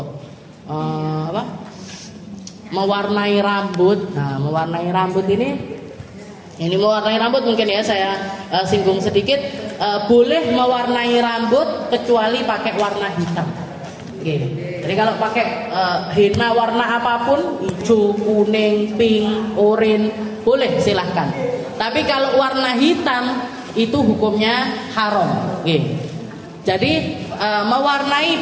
mewarnai rambut. Nah, mewarnai rambut ini mewarnai rambut mungkin ya saya singgung sedikit. Boleh mewarnai rambut kecuali pakai warna hitam. Jadi kalau pakai henna warna apapun, hijau, kuning, pink, oranye, boleh silahkan. Tapi kalau warna hitam itu hukumnya haram. Jadi mewarnai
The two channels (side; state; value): both; identical; correlation 1.00